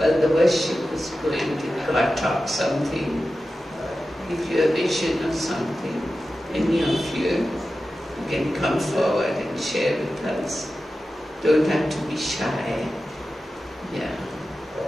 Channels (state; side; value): normal; both; correlation 0.93